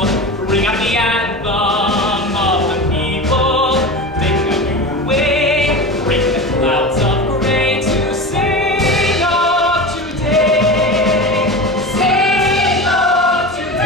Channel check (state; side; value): normal; both; correlation 0.28